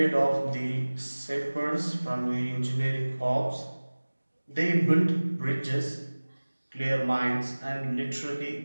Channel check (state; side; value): inverted; both; correlation -1.00